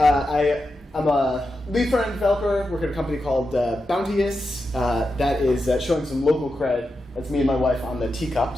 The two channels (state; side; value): normal; both; correlation 0.89